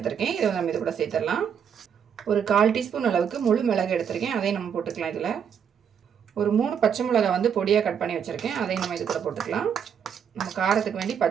இதை நம்ம இது கூட சேர்த்துடலாம். ஒரு 1/4 டீஸ்பூன் அளவுக்கு முழு மிளகு எடுத்திருக்கேன். அதையும் நம்ம போட்டுக்கலாம். இதில் ஒரு 3 பச்சை மிளகாய் வந்து பொடியாக கட் பண்ணி வச்சுருக்கேன். அதையும் நம்ம இது கூட போட்டுக்கலாம். நம்ம காரத்துக்கு வேண்டி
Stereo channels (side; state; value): left; quieter; 7.7 dB